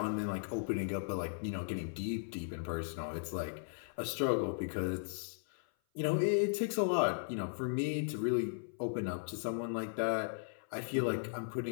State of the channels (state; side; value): silent; right; 53 dB below the other